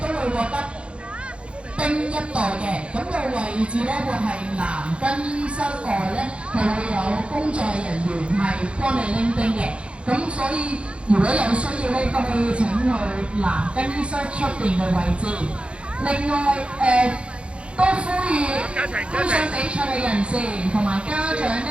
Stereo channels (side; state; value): left; late; 0.058 ms